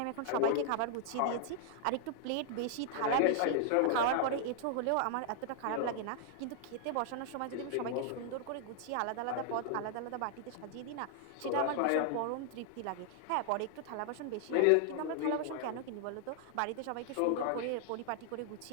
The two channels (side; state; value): both; different; correlation 0.00